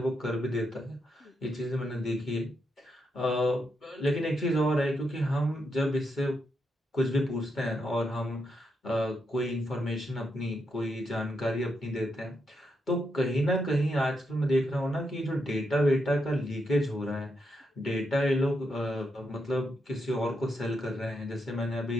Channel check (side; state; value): both; normal; correlation 0.82